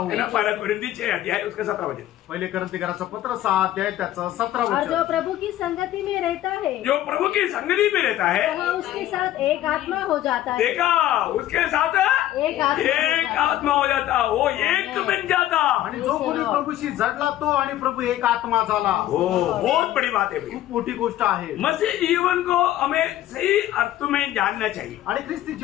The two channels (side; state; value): right; quieter; 13.5 dB